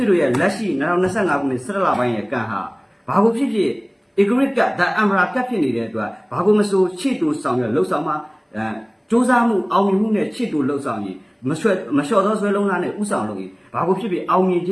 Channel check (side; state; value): both; identical; correlation 1.00